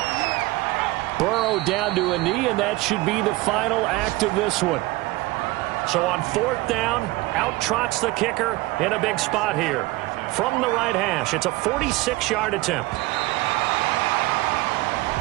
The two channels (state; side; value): quieter; left; 20.4 dB